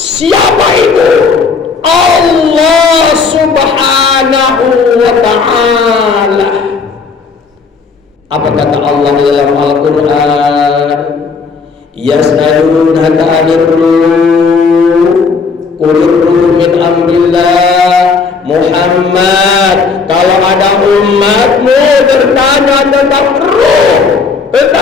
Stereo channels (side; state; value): right; quieter; 4.9 dB